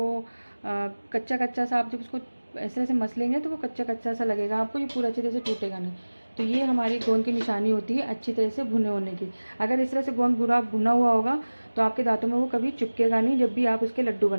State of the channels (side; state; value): both; inverted; correlation -1.00